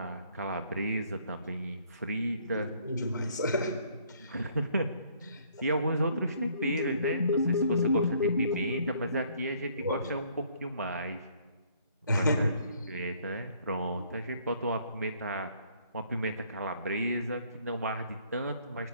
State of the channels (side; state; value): both; inverted; correlation -0.63